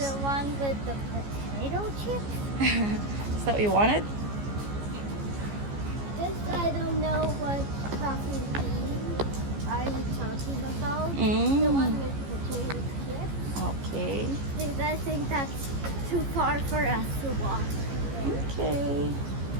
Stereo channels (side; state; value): left; late; 15 ms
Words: one with the potato chips? Is that what you wanted? This I don't know what coffee bean are you talking about. The one with potato chips. Okay. Because I think that's too far for us to walk. Okay.